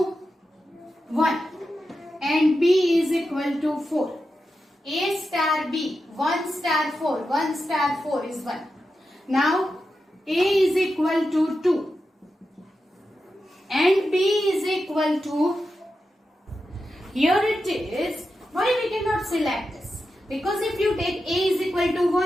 1 and B is equal to 4. A star B, 1 star 4, 1 star 4 is 1. Now A is equal to 2 and B is equal to, here it is, why we cannot select this? Because if you take A is equal to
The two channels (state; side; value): normal; both; correlation 0.90